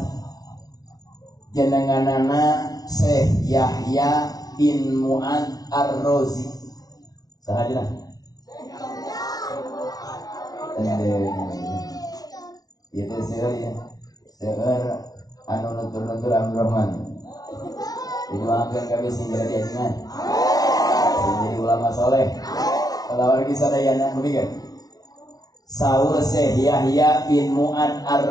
jenenganana Syekh Yahya bin Mu'ad Ar-Razi. Sahajana. Itu sih anu nutur-nutur Abdurrahman. Didoakeun kabeh sing jadi ajengan. Jadi ulama soleh. Kalau lagi sadayana begini. Saur Syekh Yahya bin Mu'ad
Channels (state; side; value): late; right; 0.18 ms